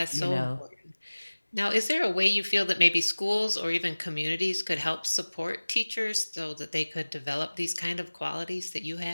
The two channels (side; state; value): both; inverted; correlation -1.00